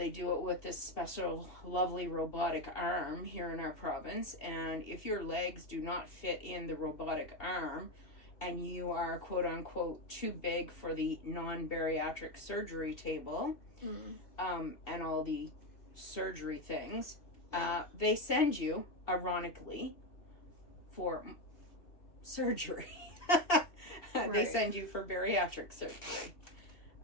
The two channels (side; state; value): right; late; 2.7 ms